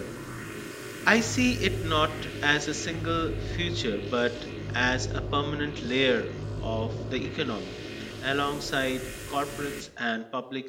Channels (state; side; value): identical; both; correlation 1.00